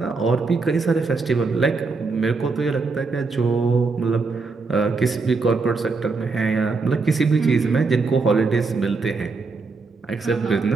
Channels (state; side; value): quieter; left; 4.2 dB